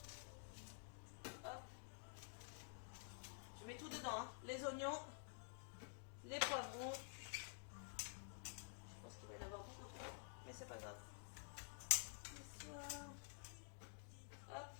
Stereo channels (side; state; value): right; silent; digital silence